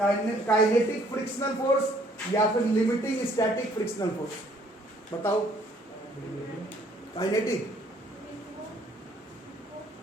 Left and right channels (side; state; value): both; normal; correlation 0.62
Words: फ्रिक्शनल फोर्स या फिर लिमिटिंग स्टैटिक फ्रिक्शनल फोर्स। बताओ, काइनेटिक